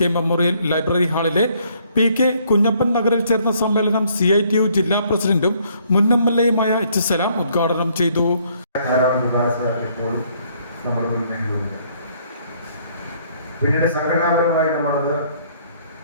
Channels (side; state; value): both; inverted; correlation -0.66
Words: മെമ്മോറിയൽ ലൈബ്രറി ഹാളിലെ PK കുഞ്ഞപ്പൻ നഗറിൽ ചേർന്ന സമ്മേളനം CITU ജില്ലാ പ്രസിഡന്റും മുൻ MLAയുമായ H. സലാം ഉദ്ഘാടനം ചെയ്തു. പിന്നീട് സംഘടനാപരമായി നമ്മളത്